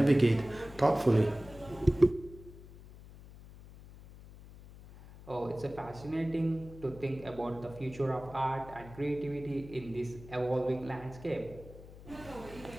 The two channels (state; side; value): noise; left; hum, 18 dB below the sound